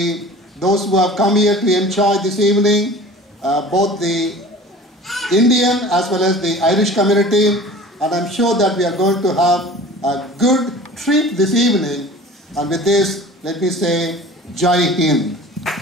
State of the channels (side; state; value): both; normal; correlation 0.42